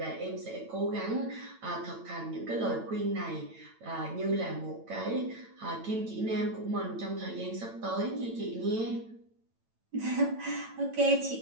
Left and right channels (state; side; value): late; left; 9.0 ms